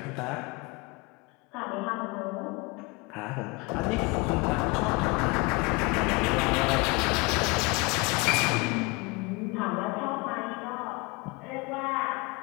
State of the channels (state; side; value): quieter; right; 26.9 dB